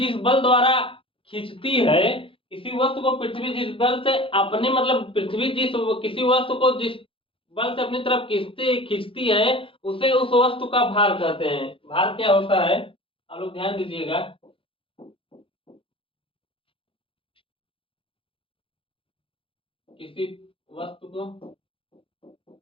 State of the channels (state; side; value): late; right; 0.26 ms